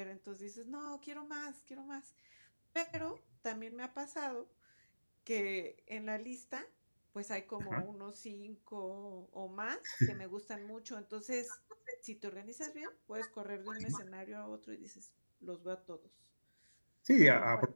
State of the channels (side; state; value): both; inverted; correlation -1.00